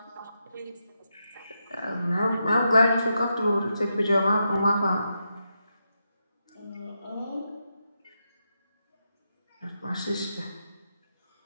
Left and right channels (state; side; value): inverted; both; correlation -0.85